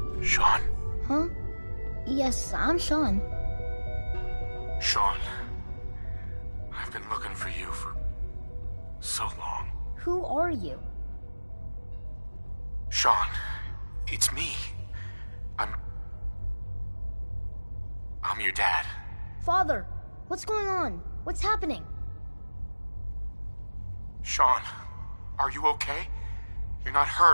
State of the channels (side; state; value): both; inverted; correlation -1.00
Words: Sean? Huh? Yes, I'm Sean. Sean, I've been looking for you for so long. Who are you? Sean, it's me. I'm your dad. Father, what's going on? What's happening? Sean, are you okay? You're not